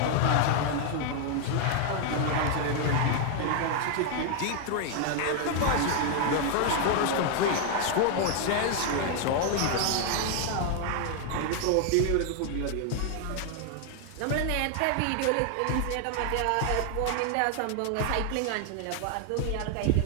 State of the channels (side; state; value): both; different; correlation 0.00